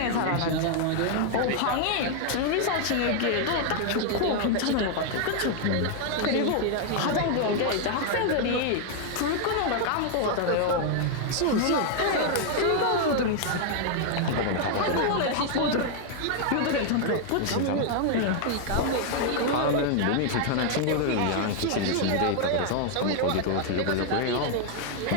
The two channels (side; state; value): both; different; correlation 0.00